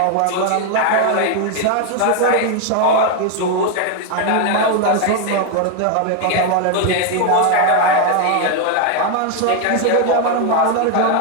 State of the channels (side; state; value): both; different; correlation 0.01